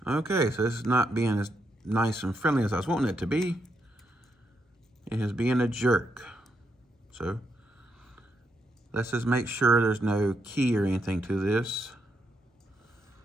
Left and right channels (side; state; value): both; normal; correlation 0.81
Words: Okay, so this is not being as nice and friendly as I was wanting it to be. It is being a jerk. So let's just make sure there's no key or anything to this.